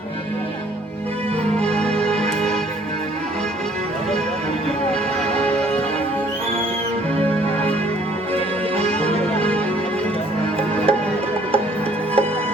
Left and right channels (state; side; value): normal; both; correlation 0.59